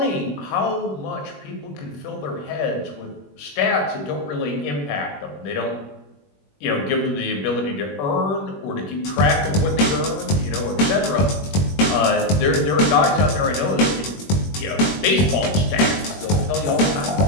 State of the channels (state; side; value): late; right; 21 ms